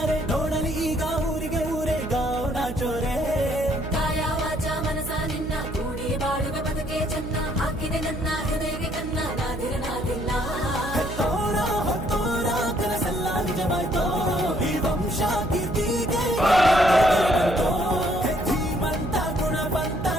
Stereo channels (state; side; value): noise; right; hum, 9 dB below the sound